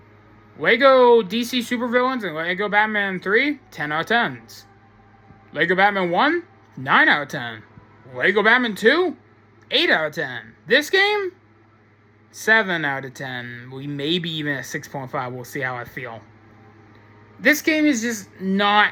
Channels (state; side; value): identical; both; correlation 1.00